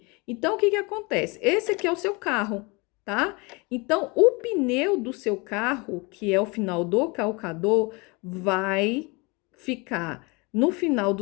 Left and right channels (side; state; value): right; quieter; 27.6 dB